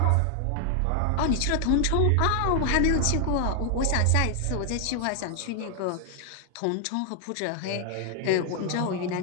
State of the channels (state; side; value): different; both; correlation 0.00